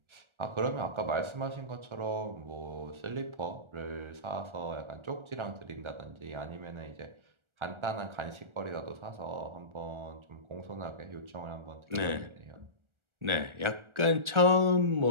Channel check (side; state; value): left; late; 1.4 ms